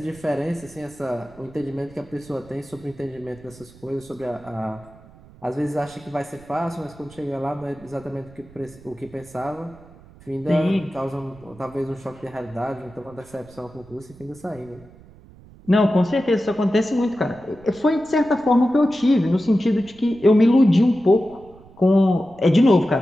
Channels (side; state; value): right; noise; rumble, 23 dB below the sound